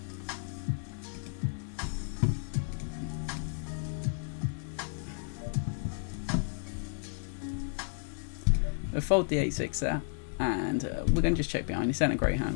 We'll fold the 8-6 there. And we're going to just check behind. He sent a great hand.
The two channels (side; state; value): right; silent; digital silence